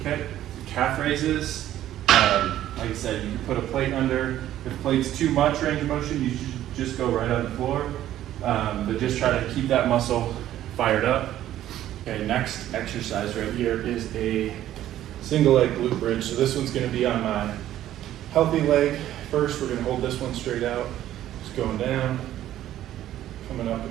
Okay, calf raises. Like I said, you can put a plate under. If the plate's too much range of motion, you should just go right on the floor. But just try to keep that muscle fired up. Okay, next exercise right here is a single leg glute bridge. So this one's gonna be on my healthy leg. First, we're gonna hold this one straight out. Just going down, coming up and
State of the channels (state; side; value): quieter; left; 12.7 dB